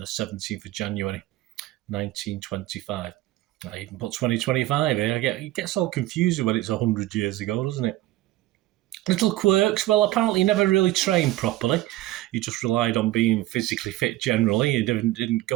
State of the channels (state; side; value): quieter; left; 16.1 dB